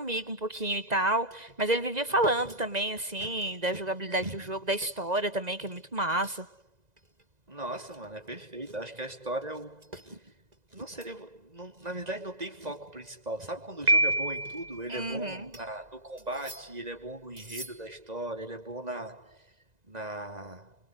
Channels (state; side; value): late; left; 2.0 ms